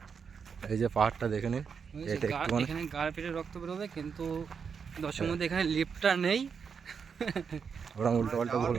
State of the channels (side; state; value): left; quieter; 6.2 dB